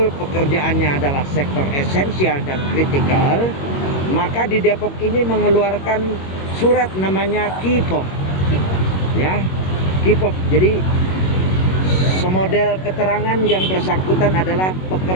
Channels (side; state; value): right; late; 21 ms